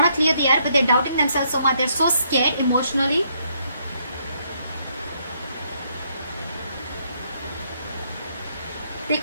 to clear the air, but they're doubting themselves so much. They're so scared emotionally. They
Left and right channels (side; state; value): both; inverted; correlation -0.72